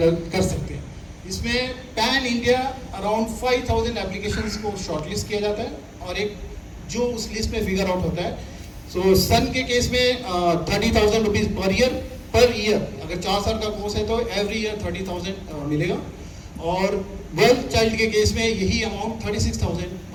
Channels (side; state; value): both; identical; correlation 1.00